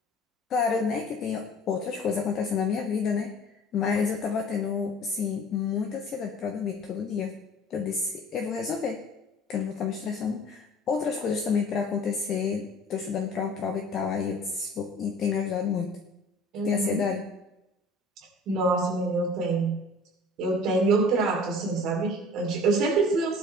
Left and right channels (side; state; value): both; normal; correlation 0.46